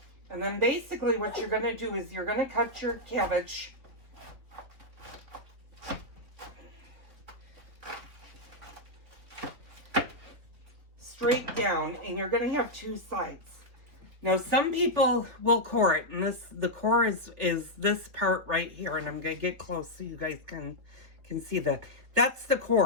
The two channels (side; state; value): left; late; 3.3 ms